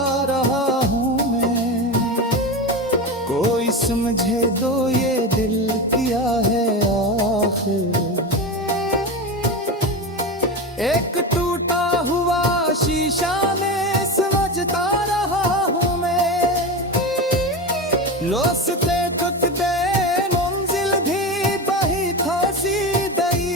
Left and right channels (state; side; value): normal; both; correlation 0.22